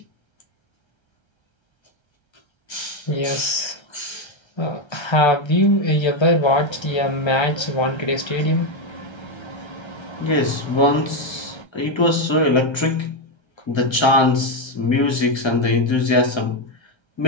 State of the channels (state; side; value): late; right; 1.3 ms